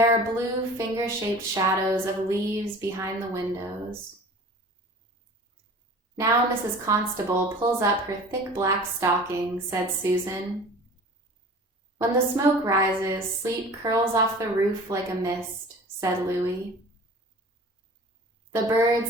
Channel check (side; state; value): both; normal; correlation 0.42